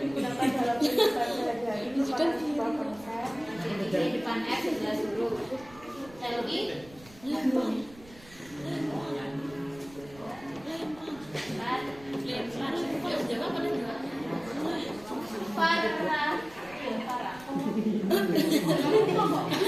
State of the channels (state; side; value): noise; right; rumble, 22 dB below the sound